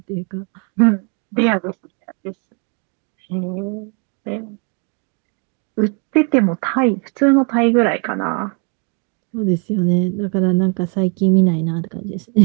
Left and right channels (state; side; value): quieter; left; 37.1 dB